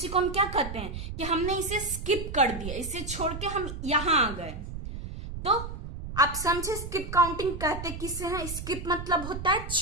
को हम क्या कहते हैं कि हमने इसे स्किप कर दिया, इसे छोड़ के हम यहां आ गए। तो आप समझे स्किप काउंटिंग कहते किसे हैं? स्किप मतलब होता है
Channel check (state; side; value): noise; right; rumble, 8 dB below the sound